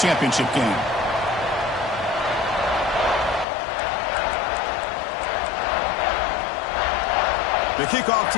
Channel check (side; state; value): right; drops out; at 3.5 s